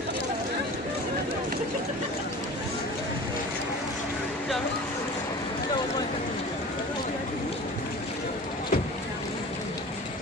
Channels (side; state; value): both; normal; correlation 0.38